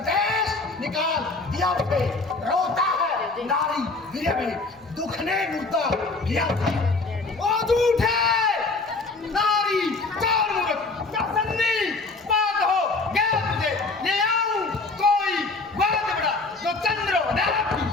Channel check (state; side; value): quieter; right; 3.6 dB